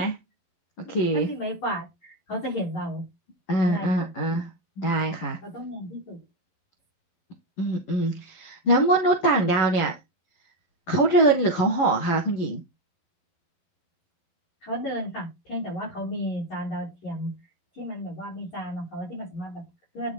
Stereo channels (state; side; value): late; right; 11 ms